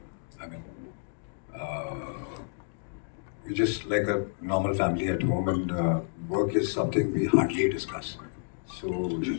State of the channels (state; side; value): silent; right; digital silence